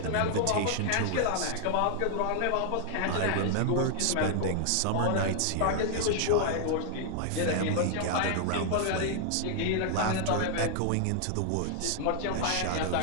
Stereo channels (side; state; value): both; different; correlation 0.00